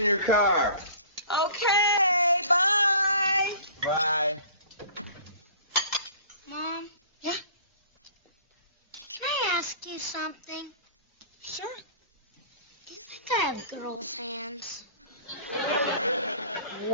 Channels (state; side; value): inverted; both; correlation -0.47